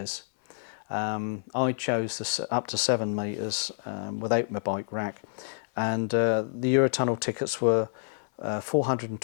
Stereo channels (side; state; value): right; silent; digital silence